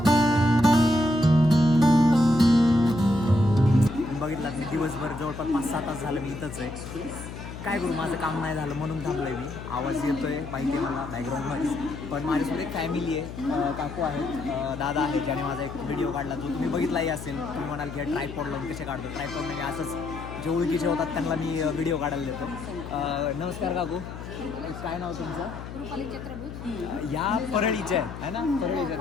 बघितलात मी दिवसभर जवळपास 5-6 तास झालं मी इथंच आहे. काय करू, माझं काम नाही झालं म्हणून थांबलो आहे मी. आवाज येतोय माहिती आहे मला बॅकग्राऊंडमध्ये, पण माझ्यासोबत एक फॅमिली आहे, काकू आहेत, दादा आहे, ज्याने माझा एक व्हिडिओ काढला जो तुम्ही बघितलाही असेल. तुम्ही म्हणाल की ट्रायपॉड लावून कसे काढतो, ट्रायपॉड नाही, असंच जे ओळखीचे होतात त्यांना मी व्हिडिओ काढायला देतो. नमस्कार काकू, काय नाव तुमचं? रुपाली चक्रभूत. या परळीचे आहे ना, परळीच्या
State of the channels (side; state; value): left; noise; hum, 11 dB below the sound